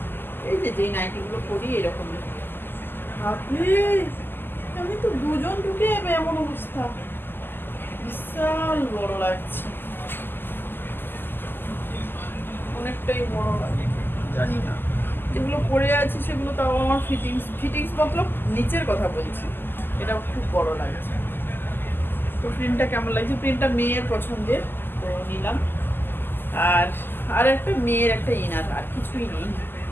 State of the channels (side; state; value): right; late; 0.096 ms